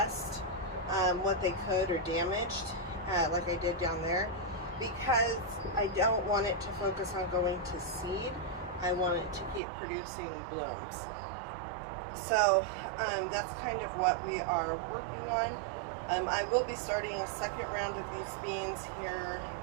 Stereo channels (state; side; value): drops out; left; at 9.6 s